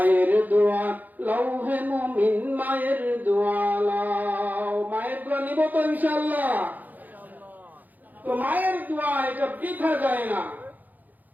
দোয়া লৌহে মুমিন মায়ের দোয়া লও। মায়ের দোয়া নিব তো ইনশাআল্লাহ? তো মায়ের দোয়া এটা বৃথা যায় না,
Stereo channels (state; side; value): late; left; 0.083 ms